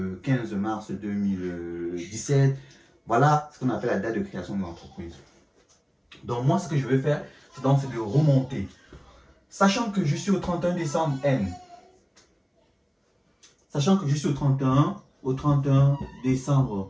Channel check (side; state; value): both; identical; correlation 1.00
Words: 15 mars 2017. Voilà ce qu'on appelle la date de création de l'entreprise. Donc moi, ce que je vais faire, c'est de remonter. Sachant que je suis au 31 décembre N. Sachant que je suis au 31